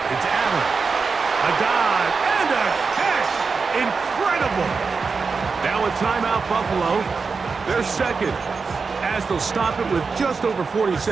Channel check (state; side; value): quieter; left; 4.8 dB